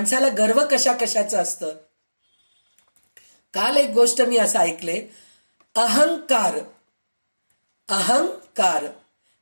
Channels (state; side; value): inverted; both; correlation -1.00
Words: गर्व कशा कशाचं असतं. काल एक गोष्ट मी असं ऐकले, अहंकार